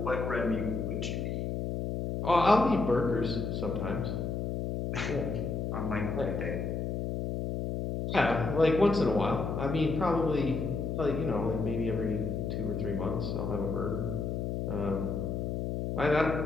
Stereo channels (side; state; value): left; noise; hum, 2 dB below the sound